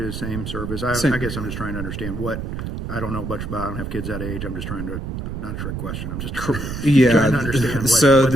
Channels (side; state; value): right; noise; rumble, 6 dB below the sound